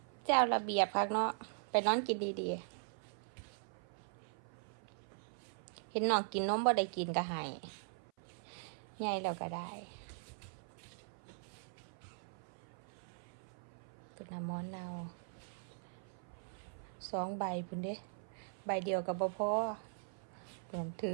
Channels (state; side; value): silent; left; 50 dB below the other